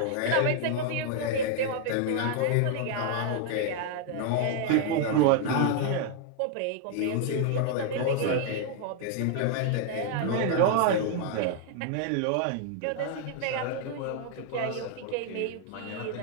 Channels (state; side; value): different; both; correlation 0.00